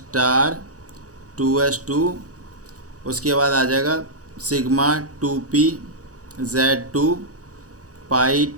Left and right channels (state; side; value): late; left; 0.66 ms